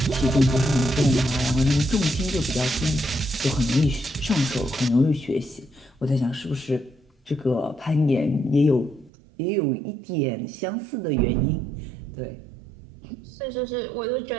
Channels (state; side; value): drops out; left; at 9.1 s